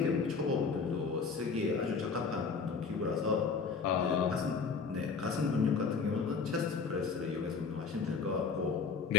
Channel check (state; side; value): quieter; right; 5.4 dB